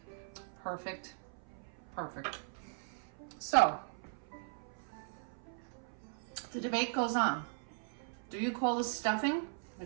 Perfect. Perfect. So, the debate goes on. Do you call this stuffing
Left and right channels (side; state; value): left; silent; 52 dB below the other